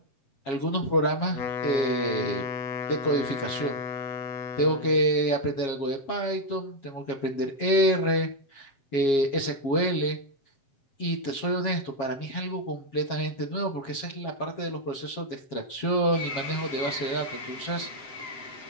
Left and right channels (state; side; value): late; right; 7.3 ms